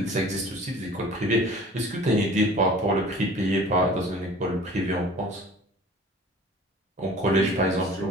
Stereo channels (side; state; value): both; normal; correlation 0.45